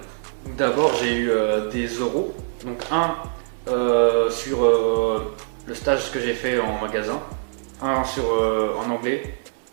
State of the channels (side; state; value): left; silent; digital silence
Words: Donc d'abord j'ai eu des euros, donc un sur le stage que j'ai fait en magasin, un en anglais,